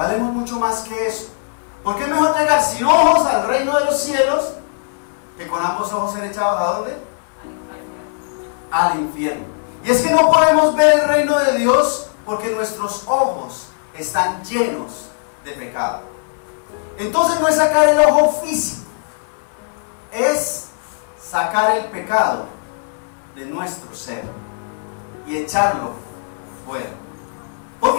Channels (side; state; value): right; silent; 66 dB below the other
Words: mucho más que eso. Porque es mejor llegar sin ojos al reino de los cielos que con ambos ojos ser echados ¿a dónde? Al infierno. Y es que no podemos ver el reino de Dios porque nuestros ojos están llenos de pecado. Entonces no es sacar el ojo físico, es sacar el pecado de nuestro ser y echarlo fuera. ¿Por